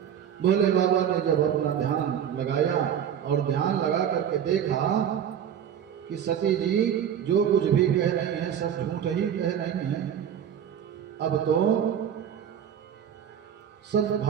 भोले बाबा ने जब अपना ध्यान लगाया और ध्यान लगा करके देखा कि सती जी जो कुछ भी कह रही हैं सब झूठ ही कह रही हैं, अब तो सब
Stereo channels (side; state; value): left; quieter; 9.0 dB